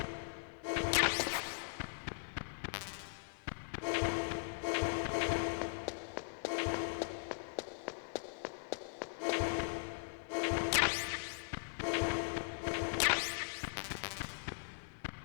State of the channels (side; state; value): right; silent; digital silence